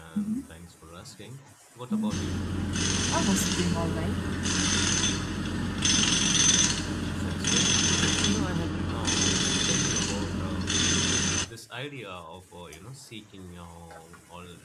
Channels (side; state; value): both; identical; correlation 1.00